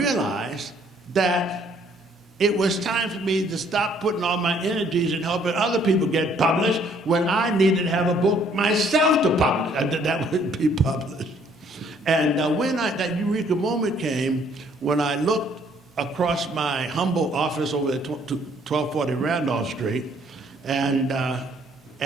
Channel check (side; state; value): both; normal; correlation 0.63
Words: that it was time for me to stop putting all my energies in helping other people get published when I needed to have a book myself to publish, that would be published. And when that eureka moment came, when I looked across my humble office over at 1240 Randolph Street and